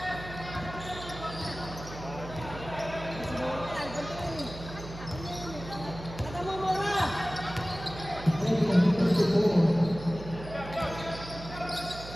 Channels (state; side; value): noise; right; hum, 12 dB below the sound